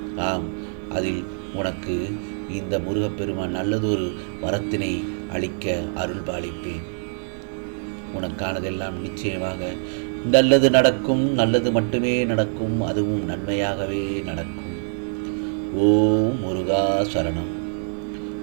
ஆம், அதில் உனக்கு இந்த முருகப்பெருமான் நல்லதொரு வரத்தினை அளிக்க அருள் பாலிப்பேன். உனக்கானதெல்லாம் நிச்சயமாக நல்லது நடக்கும். நல்லது மட்டுமே நடக்கும். அதுவும் நன்மையாகவே நடக்கும். ஓம் முருகா சரணம்.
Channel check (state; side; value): silent; left; 63 dB below the other